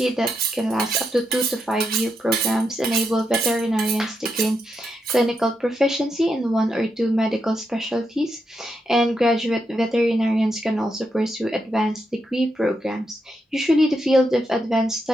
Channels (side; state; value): both; normal; correlation 0.83